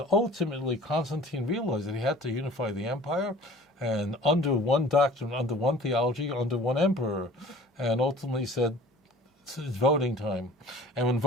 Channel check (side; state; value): both; normal; correlation 0.46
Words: ultimately, Constantine realized that he had to unify the empire, and under one doctrine, under one theology, under one emperor. And ultimately said, it's voting time. And when